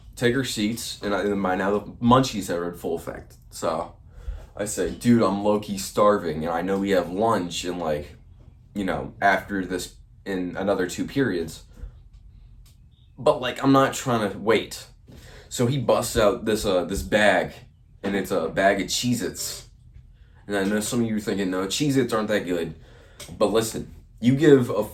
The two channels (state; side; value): identical; both; correlation 1.00